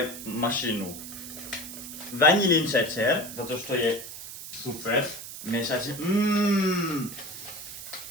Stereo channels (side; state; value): right; noise; hiss, 11 dB below the sound